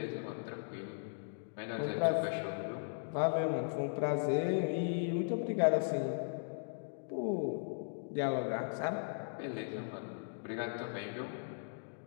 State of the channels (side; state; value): right; silent; digital silence